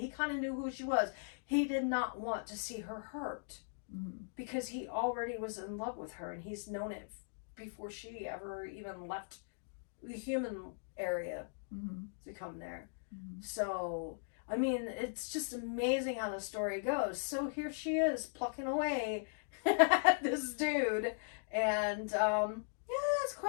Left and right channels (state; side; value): silent; right; digital silence